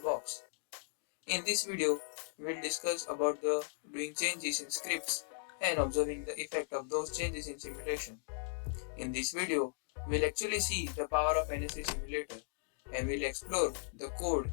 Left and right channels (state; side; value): silent; right; digital silence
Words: In this video, we'll discuss about the doing changes in scripts and observing the effect of those changes in simulation. In this video, we'll actually see the power of NS3 simulator and we'll explore the code